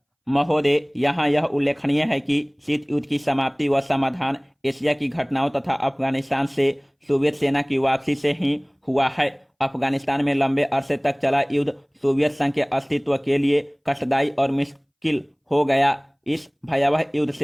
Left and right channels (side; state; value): both; identical; correlation 1.00